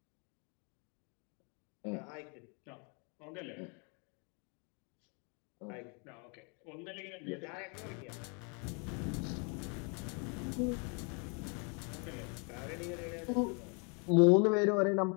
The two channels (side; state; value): right; quieter; 35.6 dB